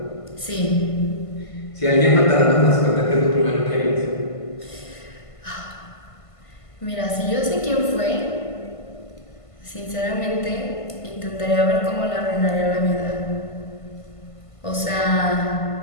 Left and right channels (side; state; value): right; late; 1.5 ms